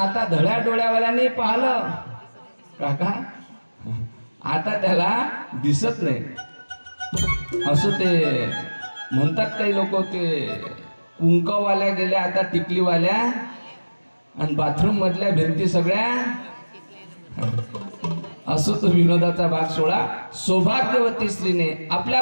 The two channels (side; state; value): both; inverted; correlation -1.00